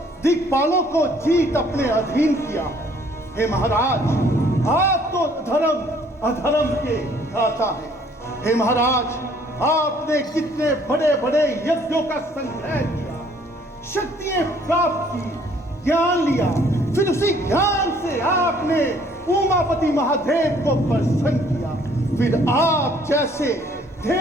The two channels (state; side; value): normal; both; correlation 0.60